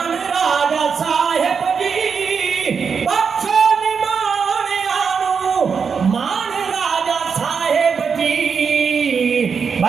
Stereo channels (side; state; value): left; quieter; 6.0 dB